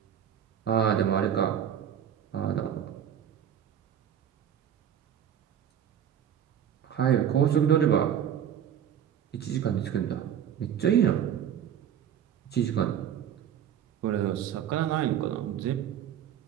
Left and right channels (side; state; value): left; quieter; 9.5 dB